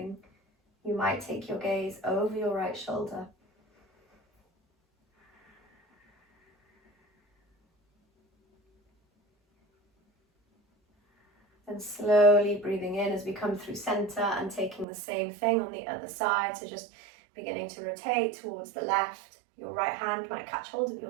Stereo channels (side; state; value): left; drops out; at 14.9 s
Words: You might take your gaze over your right shoulder. And slowly breathing in as we come through center and taking the same thing on the other side. So just beginning to rotate towards the left. Your right hand might catch hold of